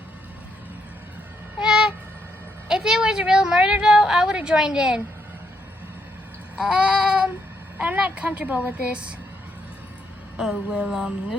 If it was a real murder, though, I would have joined in. I'm not comfortable with this. Oh, well, it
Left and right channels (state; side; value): normal; both; correlation 0.76